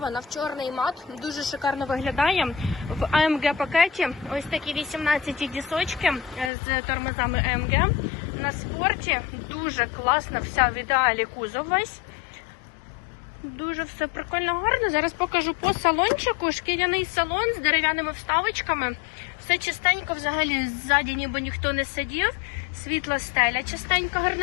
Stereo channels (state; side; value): drops out; right; at 6.5 s